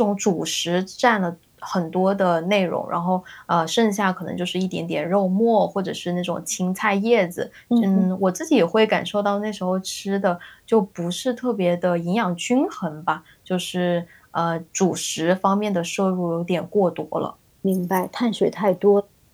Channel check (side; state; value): both; identical; correlation 1.00